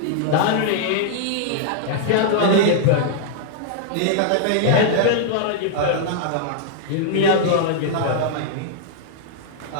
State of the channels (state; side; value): different; both; correlation -0.01